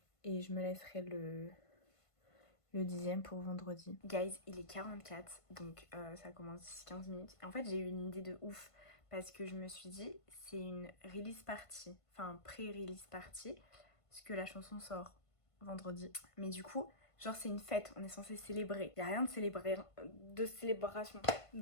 Et je me laisserai le 10e pour vendredi. Guys, il est 44, donc ça commence d'ici 15 minutes. Et en fait, j'ai eu une idée de ouf parce que je me suis dit, c'est une release party, enfin pré-release party, parce que la chanson sort vendredi. Mais du coup, genre c'est une fête, on est censé célébrer. Il n'y a rien de célébration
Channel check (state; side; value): late; right; 1.5 ms